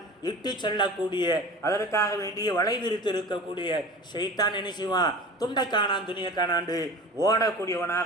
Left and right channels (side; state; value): both; normal; correlation 0.37